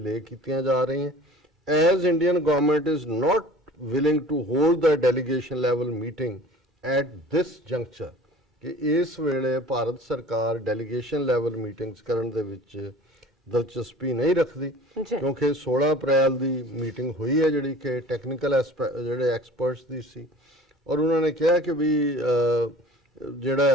ਕੀਤੀਆਂ ਜਾ ਰਹੀਆਂ। As Indian government is not willing to hold the delegation level meeting at this juncture, ਕਿ ਇਸ ਵੇਲੇ ਭਾਰਤ ਸਰਕਾਰ ਡੈਲੀਗੇਸ਼ਨ ਲੈਵਲ ਮੀਟਿੰਗਸ ਕਰਨ ਦੇ ਵਿੱਚ ਦਿਲਚਸਪੀ ਨਹੀਂ ਰੱਖਦੀ, ਕਿਉਂਕਿ 16 ਅਪ੍ਰੈਲ ਦੀ ਮੀਟਿੰਗ ਹੋਈ ਹੈ ਜਿਹੜੀ ਕਿ ਟੈਕਨੀਕਲ ਜਿਹੜੇ ਐਕਸਪਰਟਸ ਦੀ ਸੀ। ਔਰ ਉਹਨਾਂ ਨੇ ਕਿਹਾ ਕਿ ਵੀ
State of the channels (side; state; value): both; normal; correlation 0.45